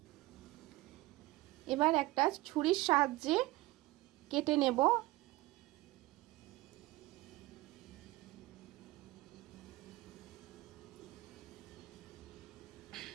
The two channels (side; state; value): left; quieter; 19.6 dB